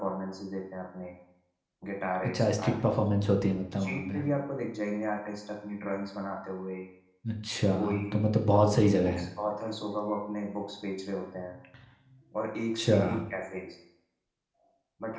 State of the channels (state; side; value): identical; both; correlation 1.00